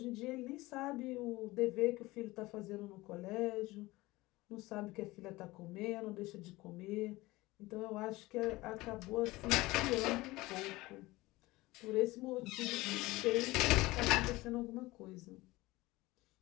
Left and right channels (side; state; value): right; quieter; 20.1 dB